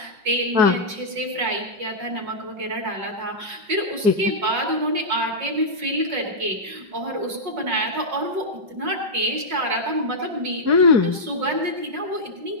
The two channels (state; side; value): late; left; 5.4 ms